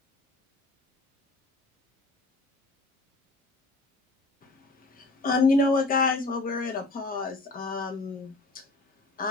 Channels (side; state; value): right; quieter; 3.1 dB